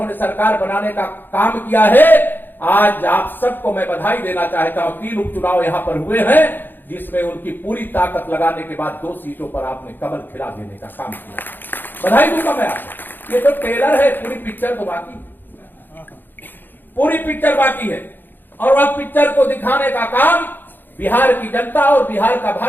सरकार बनाने का काम किया है, आज आप सबको मैं बधाई देना चाहता हूं। 3 उपचुनाव यहां पर हुए हैं जिसमें उनकी पूरी ताकत लगाने के बाद 2 सीटों पर आपने कमल खिला देने का काम किया। बधाई दूंगा मैं आपको। ये तो ट्रेलर है, पूरी पिक्चर तो बाकी है, पूरी पिक्चर बाकी है। और वह पिक्चर को दिखाने का काम बिहार की जनता और बिहार का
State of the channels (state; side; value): late; right; 0.092 ms